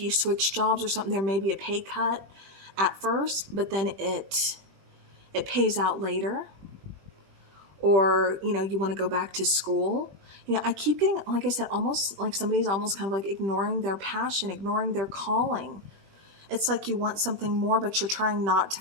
switch jobs or something, there may be a pay cut at first, but then it pays out later. Or, you want to go back to school. I keep getting, like I said, almost like somebody's almost kind of like ignoring their passion, ignoring their calling. It's like you want something more, but you're trying not to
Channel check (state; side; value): late; left; 21 ms